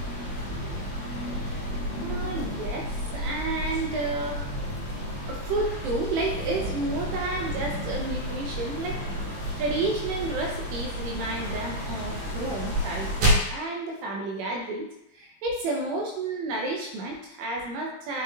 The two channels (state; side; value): late; left; 21 ms